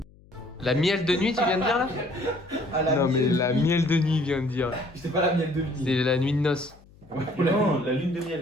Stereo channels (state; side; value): noise; left; hum, 26 dB below the sound